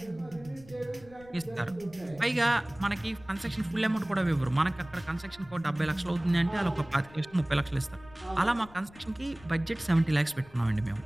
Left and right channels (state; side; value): noise; left; rumble, 22 dB below the sound